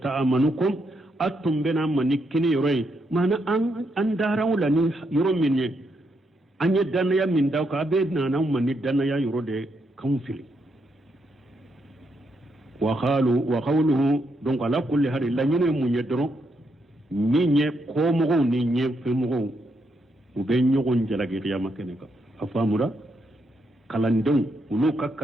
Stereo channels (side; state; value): both; normal; correlation 0.79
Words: تأمنكم أتم بنا منكني يروي معنى أن داروا لني يرو مني أن يدنا من داوك أبدنا نوم من يدنا يرو دي كونفلي وقوله دونك على كل هذه لا ينو من يدرو نيني كومغو نيني فمغو وبين يغن جلاجي قيامة كنكا أفهموا kalandon ulu